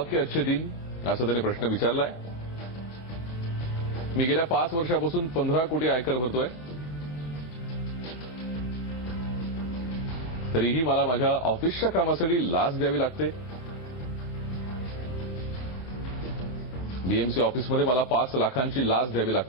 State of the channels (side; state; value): right; late; 34 ms